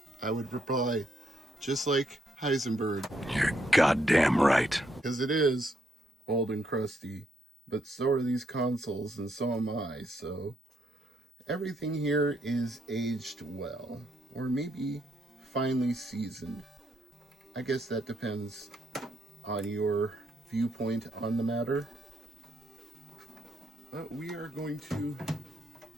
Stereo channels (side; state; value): both; normal; correlation 0.75